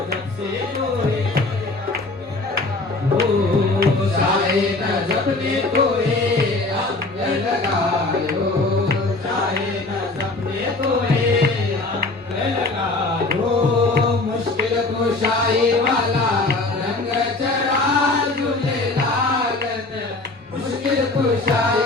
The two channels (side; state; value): right; quieter; 3.2 dB